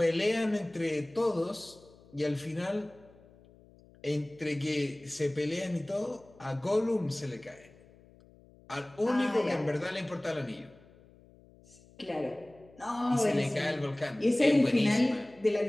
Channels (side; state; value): left; noise; hum, 26 dB below the sound